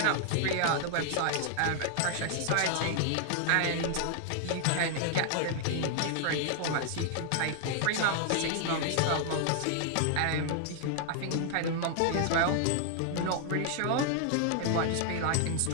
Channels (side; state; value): both; different; correlation 0.00